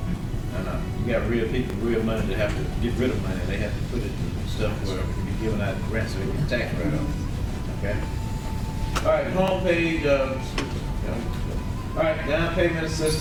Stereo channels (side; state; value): both; identical; correlation 1.00